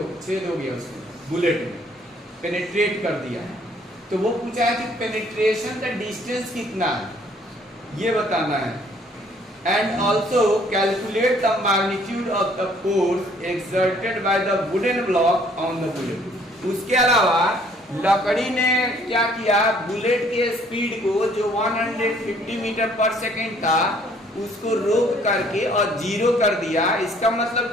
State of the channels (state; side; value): normal; both; correlation 0.61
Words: हो गया उसमें, बुलेट में पेनिट्रेट कर दिया। तो वो पूछा है कि पेनिट्रेशन का डिस्टेंस कितना है, ये बताना है। And also calculate the magnitude of the force exerted by the wooden block on the bullet। उसके अलावा लकड़ी ने क्या किया, बुलेट के स्पीड को जो 150 मीटर पर सेकेंड था उसको रोक करके और 0 कर दिया। इसका मतलब